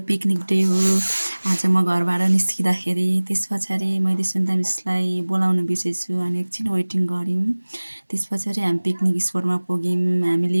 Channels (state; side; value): inverted; both; correlation -1.00